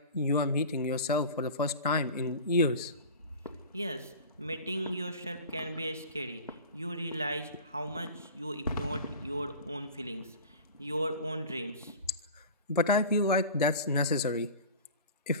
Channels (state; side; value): inverted; both; correlation -0.36